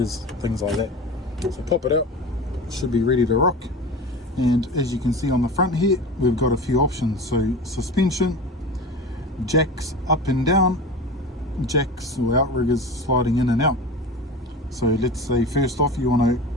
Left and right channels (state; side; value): normal; both; correlation 0.31